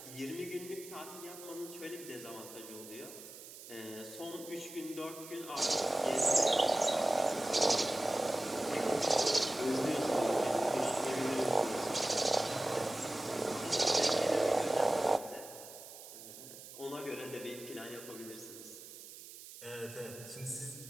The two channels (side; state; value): right; noise; hiss, 15 dB below the sound